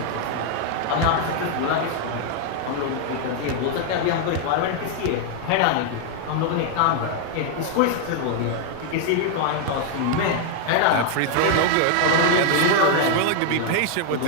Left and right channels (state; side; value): different; both; correlation 0.00